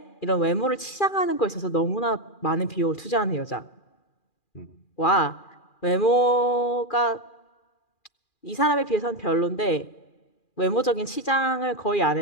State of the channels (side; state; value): right; late; 2.4 ms